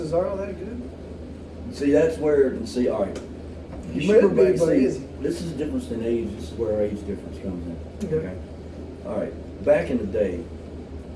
that good? See, that's where, all right. He You remember should be, back, but see, is he? this is the difference in age. This is where our age difference comes in. Okay. All right. Back in the day,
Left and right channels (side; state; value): both; identical; correlation 1.00